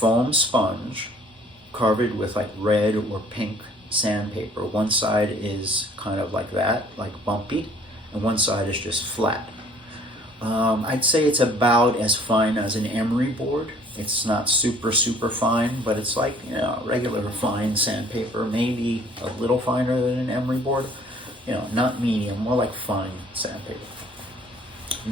sponge covered with like red or pink sandpaper. One side is kind of like that, like bumpy, and one side is just flat. I'd say it's about as fine as an emery board. It's not super fine, but it's like, regular fine sandpaper, maybe a little finer than an emery board. Not medium, more like fine sandpaper.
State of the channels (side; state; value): both; normal; correlation 0.56